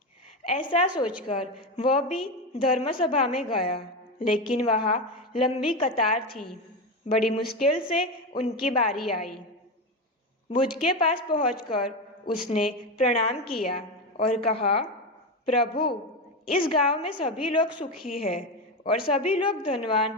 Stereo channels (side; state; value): both; normal; correlation 0.15